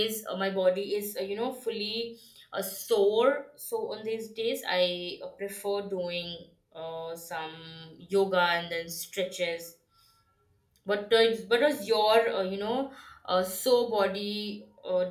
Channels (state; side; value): identical; both; correlation 1.00